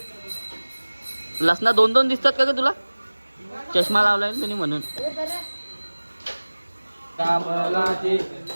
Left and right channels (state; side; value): inverted; both; correlation -1.00